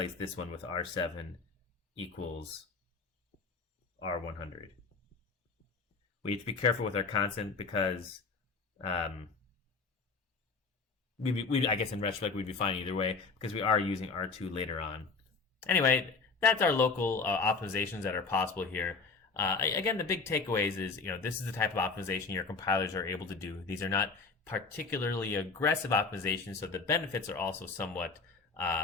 this one with R7 equals R100. We have to be careful with our constant because I guess in retrospect we'd be fine either way because we are using R2 later on. Anyway, that's our local optimizations that are possible here. Again, the big takeaways is, this is the type of optimization your compilers are able to do. These are not particularly aggressive optimizations, so the benefits are also somewhat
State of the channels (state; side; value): quieter; right; 4.5 dB